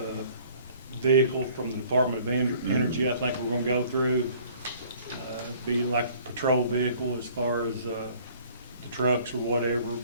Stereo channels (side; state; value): both; inverted; correlation -0.55